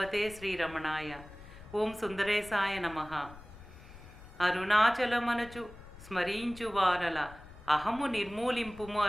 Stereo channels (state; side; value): noise; left; rumble, 18 dB below the sound